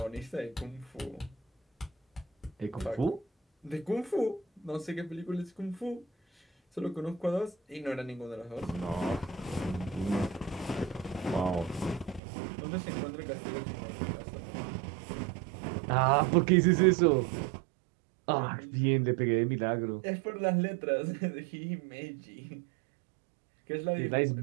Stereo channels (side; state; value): left; drops out; at 12.2 s